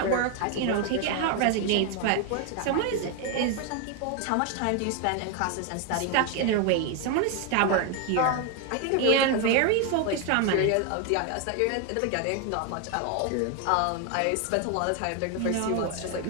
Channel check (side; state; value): both; different; correlation 0.01